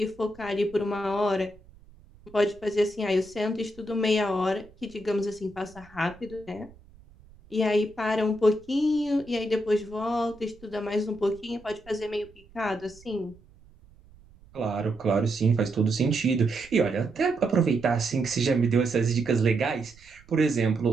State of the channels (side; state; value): right; noise; rumble, 25 dB below the sound